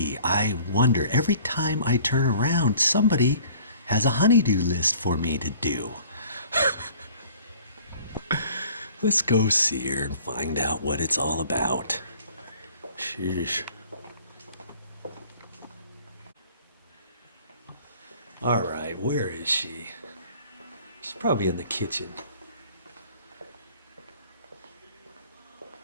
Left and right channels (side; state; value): both; inverted; correlation -0.52